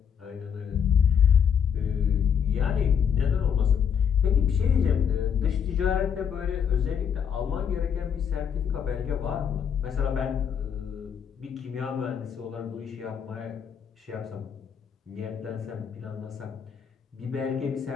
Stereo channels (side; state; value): right; quieter; 7.6 dB